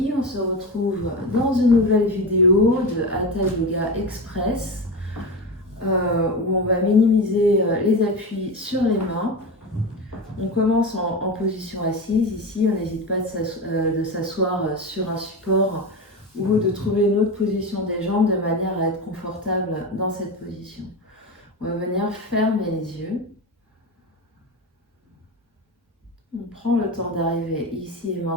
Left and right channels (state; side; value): normal; both; correlation 0.21